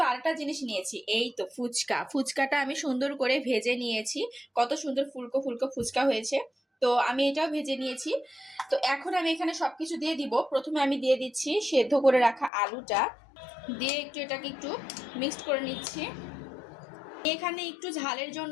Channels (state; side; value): drops out; right; at 12.5 s